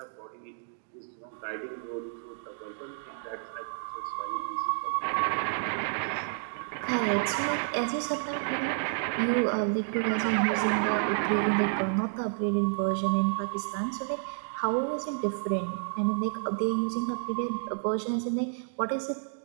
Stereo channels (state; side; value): silent; left; digital silence